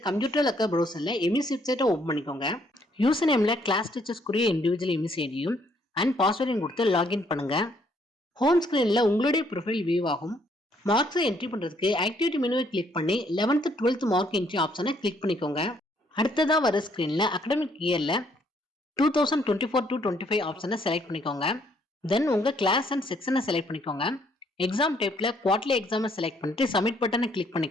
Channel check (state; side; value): normal; both; correlation 0.68